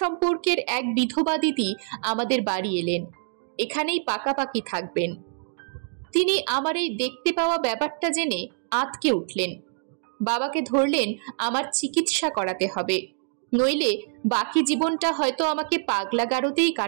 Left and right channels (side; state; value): left; silent; digital silence